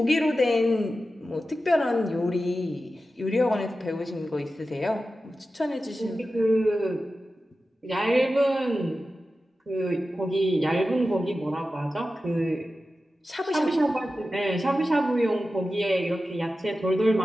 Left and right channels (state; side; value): normal; both; correlation 0.93